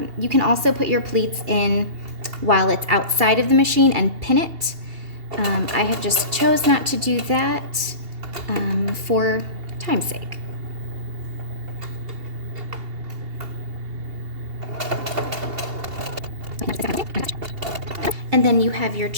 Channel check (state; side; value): late; left; 2.8 ms